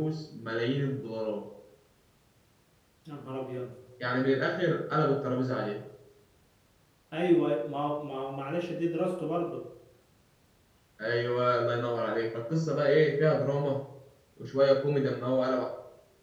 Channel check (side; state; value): both; identical; correlation 1.00